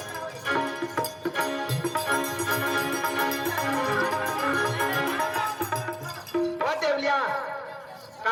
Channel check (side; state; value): both; identical; correlation 1.00